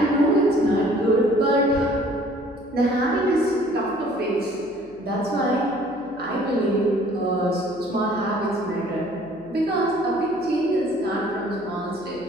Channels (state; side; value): noise; left; hum, 28 dB below the sound